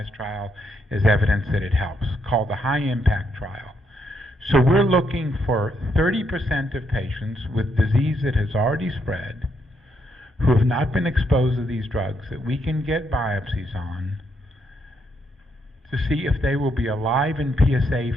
trial as evidence that it helps, called the high-impact trial. So we're looking for 30% of patients with disease that has already spread who have not been exposed to these drugs that we can get biopsies on to see if they will be alive and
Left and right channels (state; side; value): normal; both; correlation 0.76